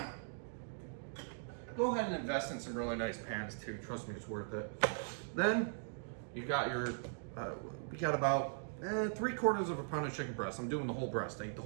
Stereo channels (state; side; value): silent; left; digital silence